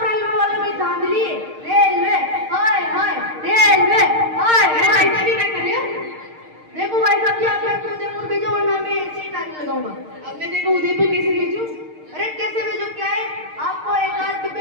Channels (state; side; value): late; left; 6.5 ms